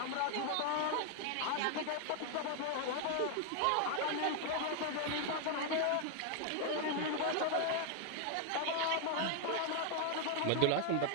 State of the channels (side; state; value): both; different; correlation 0.00